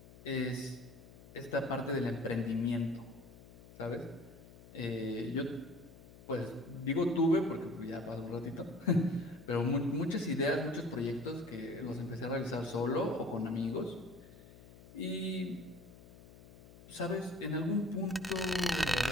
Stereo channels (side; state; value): left; noise; hum, 20 dB below the sound